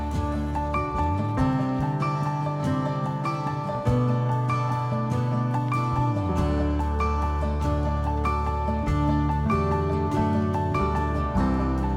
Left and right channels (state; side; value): identical; both; correlation 1.00